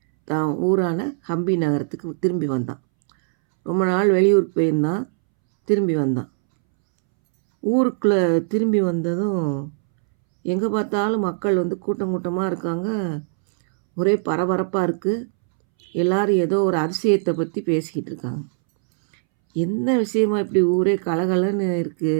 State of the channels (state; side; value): silent; left; 65 dB below the other